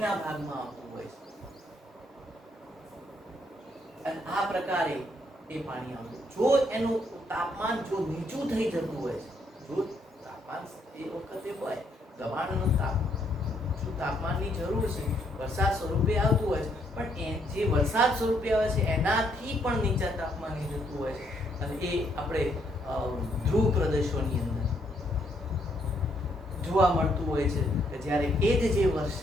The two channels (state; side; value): normal; both; correlation 0.72